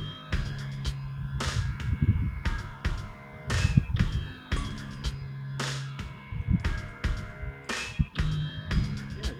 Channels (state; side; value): identical; both; correlation 1.00